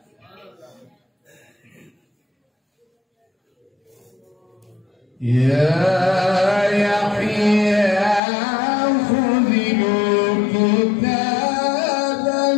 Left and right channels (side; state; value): right; drops out; at 8.2 s